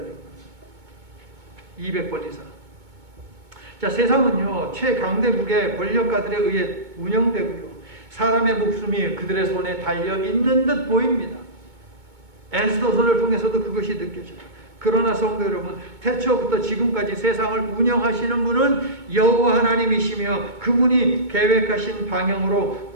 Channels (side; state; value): left; late; 2.2 ms